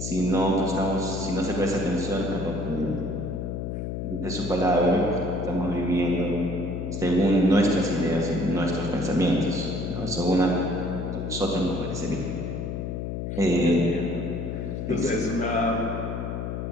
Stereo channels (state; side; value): noise; left; hum, 4 dB below the sound